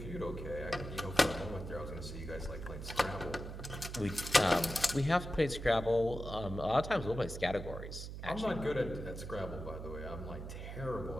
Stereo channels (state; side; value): noise; right; hum, 8 dB below the sound